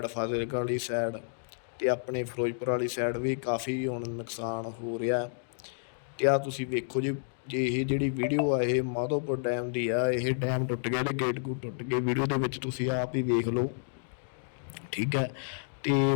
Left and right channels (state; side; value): silent; right; digital silence